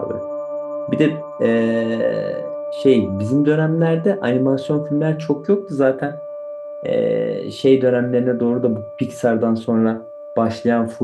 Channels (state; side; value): identical; both; correlation 1.00